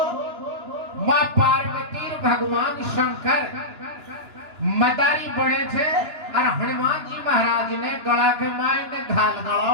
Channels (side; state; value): left; late; 2.9 ms